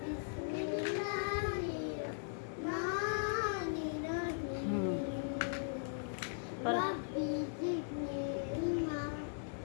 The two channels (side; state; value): right; silent; digital silence